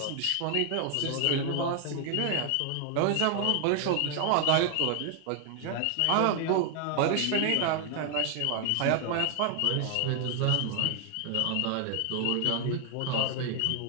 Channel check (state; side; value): different; both; correlation 0.00